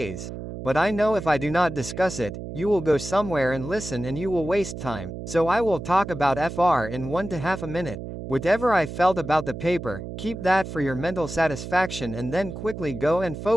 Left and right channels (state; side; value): noise; right; hum, 9 dB below the sound